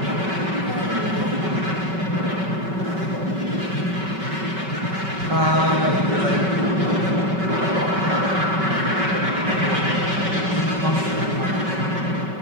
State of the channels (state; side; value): late; left; 5.3 ms